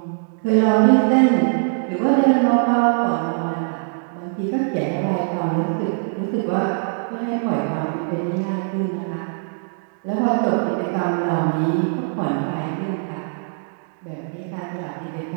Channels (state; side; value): silent; left; 64 dB below the other